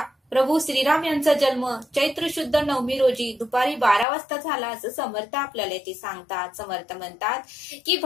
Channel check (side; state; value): right; drops out; at 4.0 s